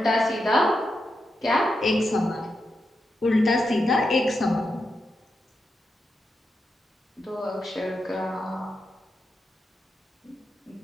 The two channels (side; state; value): both; normal; correlation 0.86